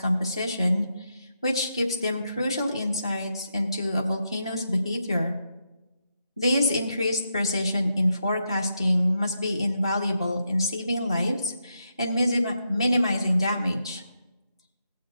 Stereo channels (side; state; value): both; inverted; correlation -0.82